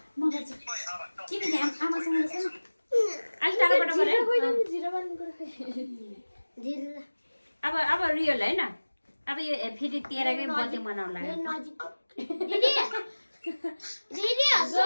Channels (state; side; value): inverted; both; correlation -1.00